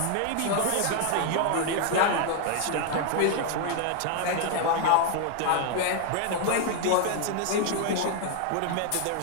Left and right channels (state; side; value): different; both; correlation 0.00